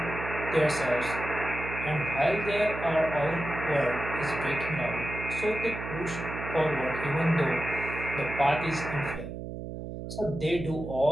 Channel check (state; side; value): noise; right; hum, 8 dB below the sound